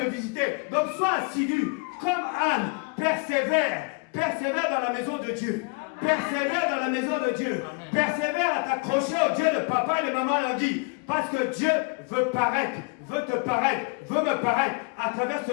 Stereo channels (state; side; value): quieter; right; 33.1 dB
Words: visiter. Donc sois assidu. Comme Anne, persévère. Persévère dans la maison de Dieu. Persévère dans la maison de Dieu. Persévère à t'accrocher au Dieu de papa et de maman Langui. Parce que Dieu veut paraître, veut te paraître, veut me paraître à travers